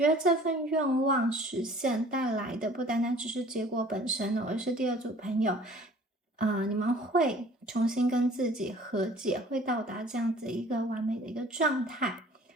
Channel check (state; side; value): normal; both; correlation 0.50